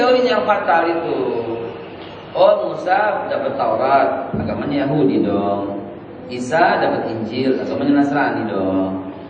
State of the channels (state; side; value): identical; both; correlation 1.00